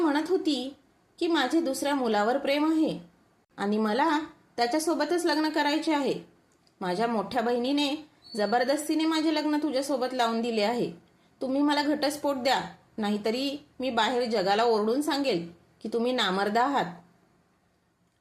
होती की माझे दुसऱ्या मुलावर प्रेम आहे आणि मला त्याच्यासोबतच लग्न करायचे आहे. माझ्या मोठ्या बहिणीने जबरदस्तीने माझे लग्न तुझ्यासोबत लावून दिले आहे. तुम्ही मला घटस्फोट द्या, नाहीतरी मी बाहेर जगाला ओरडून सांगेल की तुम्ही नामर्द आहात.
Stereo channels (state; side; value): identical; both; correlation 1.00